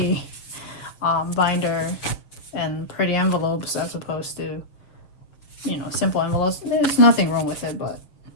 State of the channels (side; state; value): right; late; 7.0 ms